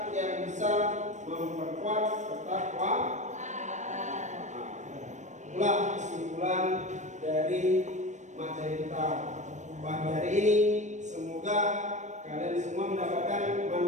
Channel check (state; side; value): late; left; 0.35 ms